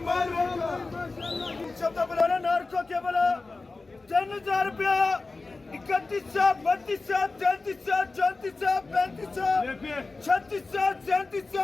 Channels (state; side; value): quieter; right; 3.6 dB